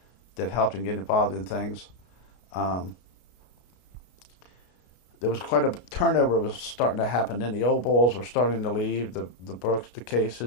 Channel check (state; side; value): late; right; 33 ms